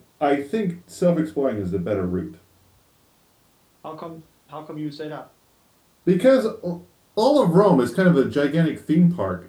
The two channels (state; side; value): identical; both; correlation 1.00